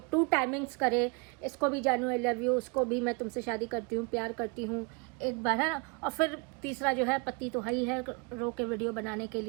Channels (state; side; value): quieter; left; 31.3 dB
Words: टाइमिंग्स करे। इसको भी जानू आई लव यू, उसको भी मैं तुमसे शादी करती हूँ, प्यार करती हूँ, एक बार है ना। और फिर तीसरा जो है पति तो ही है, रो के वीडियो बनाने के